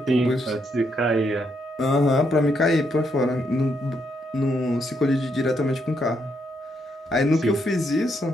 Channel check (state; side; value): normal; both; correlation 0.77